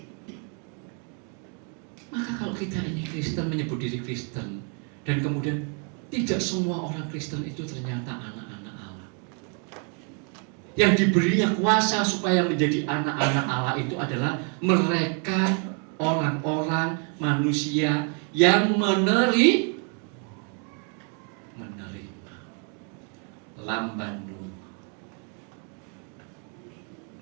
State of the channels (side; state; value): left; quieter; 38.8 dB